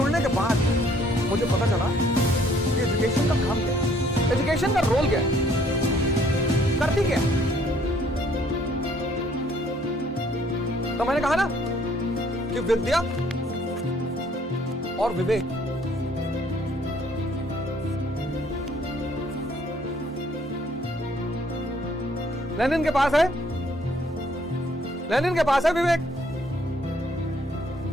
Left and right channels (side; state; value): both; normal; correlation 0.62